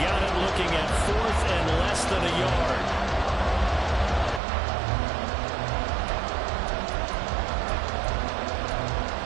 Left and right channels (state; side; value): drops out; left; at 4.4 s